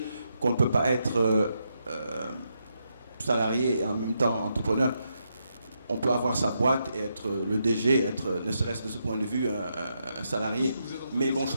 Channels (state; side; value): inverted; both; correlation -0.82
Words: qu'on ne peut pas être salarié et en même temps entrepreneur, on peut avoir sa boîte et être le DG, être, ne serait-ce de ce point de vue, un salarié. Mais bon, je